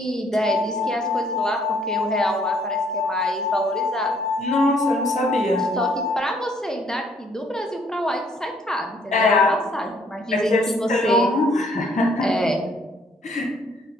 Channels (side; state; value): both; normal; correlation 0.64